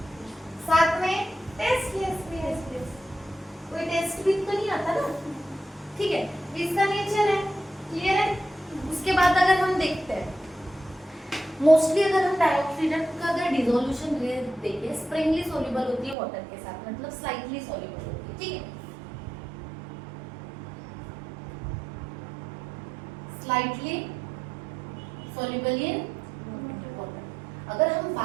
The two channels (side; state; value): left; drops out; at 16.2 s